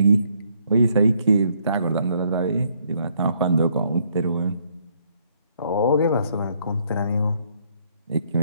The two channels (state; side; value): inverted; both; correlation -0.69